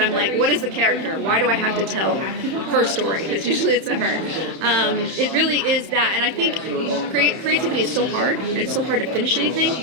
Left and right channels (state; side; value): late; left; 31 ms